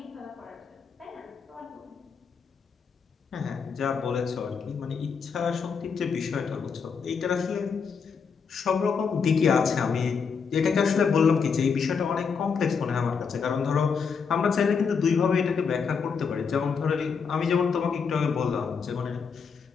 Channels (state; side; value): quieter; right; 5.9 dB